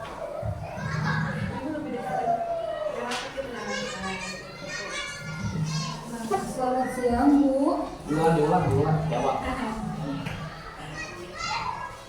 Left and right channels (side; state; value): both; identical; correlation 1.00